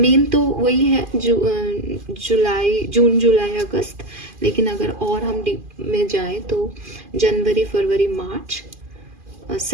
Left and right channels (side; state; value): left; late; 2.5 ms